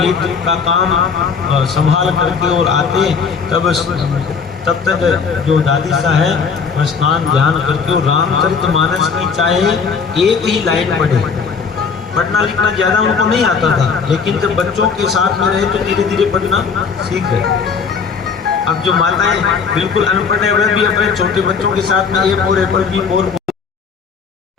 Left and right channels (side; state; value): right; quieter; 5.7 dB